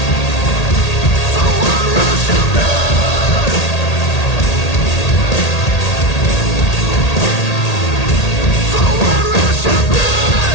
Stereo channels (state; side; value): late; right; 1.8 ms